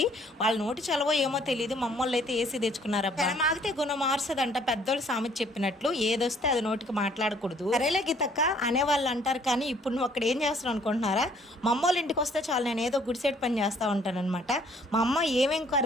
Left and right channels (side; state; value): both; normal; correlation 0.61